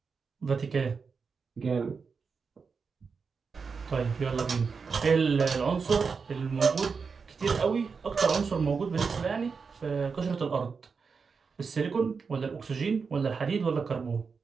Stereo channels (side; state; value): left; quieter; 5.3 dB